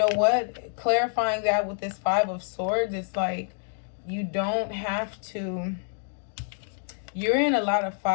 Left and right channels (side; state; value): right; silent; 60 dB below the other